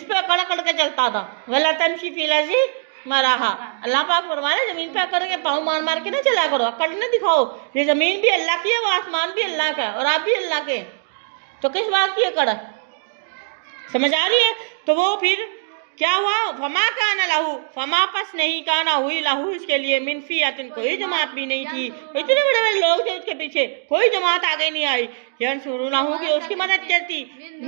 पे अकड़ अकड़ के चलता था। वला तमशी फिल अर्ज़ि मराहा, अल्लाह पाक फरमाने जमीन पे अकड़ के पाँव मार मार के ना चला करो, अकड़ न दिखाओ। ये जमीन भी अल्लाह की है, वो आसमान भी अल्लाह का है, और आप भी अल्लाह के। तो किस बात की अकड़? समझ आ रही है? तो वो फिर क्या हुआ? फमा काना लहू, फमा पस नहीं काना हुई लहू, इसके लिए मिन फियतिन, कोई जमात भी नहीं थी। इतने बड़े बड़े लोग थे उसके पीछे, कोई जमात आगे नहीं आई। यंसुरूनहू, की उसकी मदद करती,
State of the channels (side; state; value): left; silent; digital silence